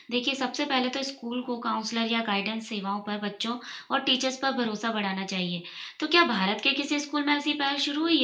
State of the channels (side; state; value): both; identical; correlation 1.00